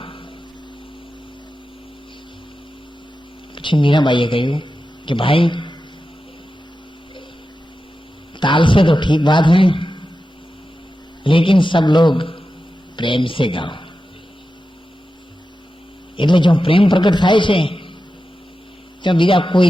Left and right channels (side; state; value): both; normal; correlation 0.92